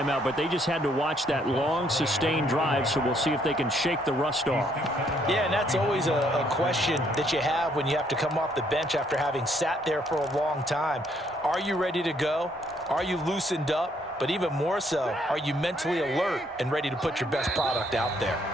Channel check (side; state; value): both; normal; correlation 0.69